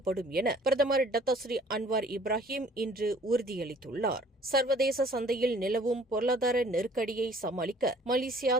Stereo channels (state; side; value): normal; both; correlation 0.55